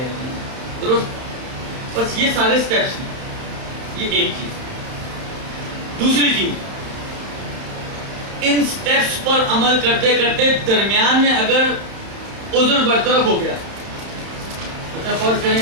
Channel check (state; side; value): late; left; 31 ms